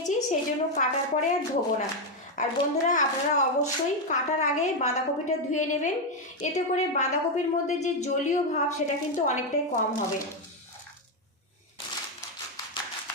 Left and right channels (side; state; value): both; normal; correlation 0.05